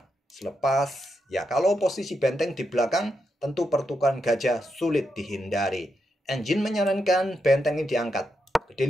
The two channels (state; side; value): normal; both; correlation 0.84